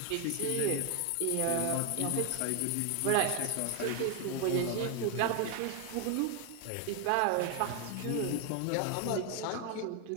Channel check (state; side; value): different; both; correlation 0.01